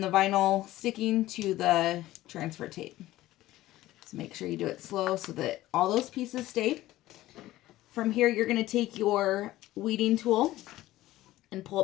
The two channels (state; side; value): quieter; right; 16.0 dB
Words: vinyl sticking to the transfer tape. So make sure you do it slow so that all those pieces stay. From here, you're going to take your weeding tool and pull